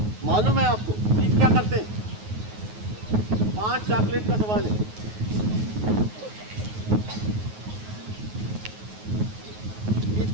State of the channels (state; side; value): late; left; 9.4 ms